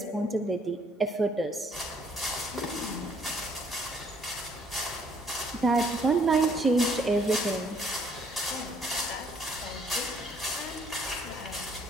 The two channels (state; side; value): normal; both; correlation 0.65